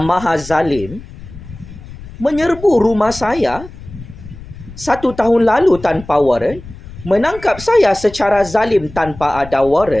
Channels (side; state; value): left; noise; rumble, 16 dB below the sound